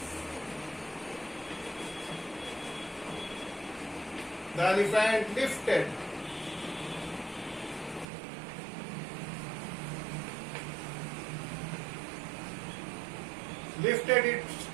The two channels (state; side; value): drops out; left; at 8.1 s